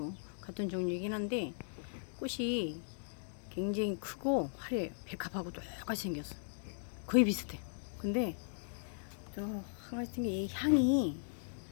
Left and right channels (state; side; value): silent; right; digital silence